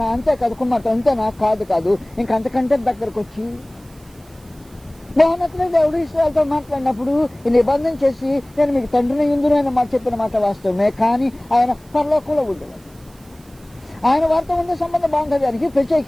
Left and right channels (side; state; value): right; noise; hiss, 28 dB below the sound